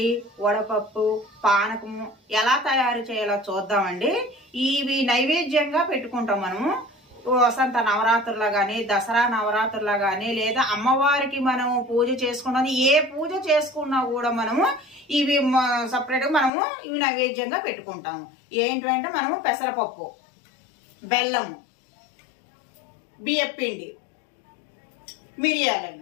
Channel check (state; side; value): drops out; right; at 16.5 s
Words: వడపప్పు, పానకము ఎలా తయారు చేయాలో చూద్దామండి. ఇవి నైవేద్యంగా పెట్టుకుంటాం మనము వసంత నవరాత్రుల్లో కానీ, దసరా నవరాత్రుల్లో కానీ, లేదా అమ్మవారికి మనము పూజ చేసుకున్నది ఏ పూజ చేసుకున్నా కూడా మనము ఇవి సపరేట్గా మనము ఇవి నైవేద్యంగా పెట్టుకుంటాము. ఏంటంటే మనము పెసరపప్పు, బెల్లము, బియ్యపిండి,